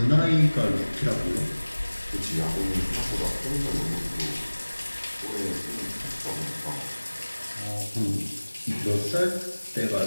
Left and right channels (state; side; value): inverted; both; correlation -1.00